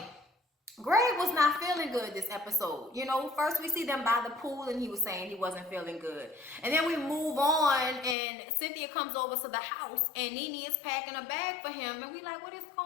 Greg was not feeling good this episode. You know, first we see them by the pool and he was saying he wasn't feeling good. And then we move on and Cynthia comes over to the house and Nene is packing a bag for him. And we like, what is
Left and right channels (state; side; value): drops out; right; at 8.2 s